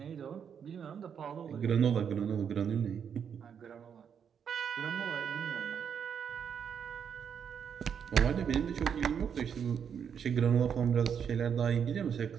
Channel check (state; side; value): quieter; left; 7.6 dB